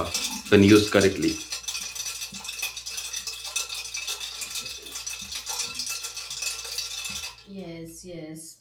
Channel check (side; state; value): both; identical; correlation 1.00